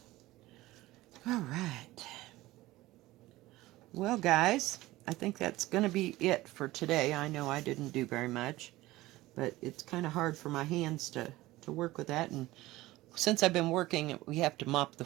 alright. Well, guys, I think that's going to be it for today. I know I didn't do very much, but it's kind of hard for my hands to work with that. And since I've been working, we have to mop the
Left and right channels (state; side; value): quieter; left; 17.9 dB